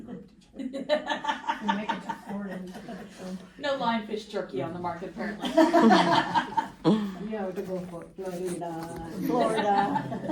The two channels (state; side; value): identical; both; correlation 1.00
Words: We make it to Florida. No lionfish jerky on the market apparently. You have to go for Florida.